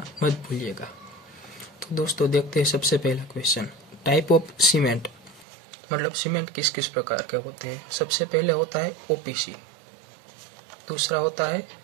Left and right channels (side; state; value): left; drops out; at 5.5 s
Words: मत भूलिएगा। तो दोस्तों देखते हैं सबसे पहला क्वेश्चन। टाइप ऑफ सीमेंट, मतलब सीमेंट किस किस प्रकार के होते हैं। सबसे पहले होता है ओपीसी, दूसरा होता है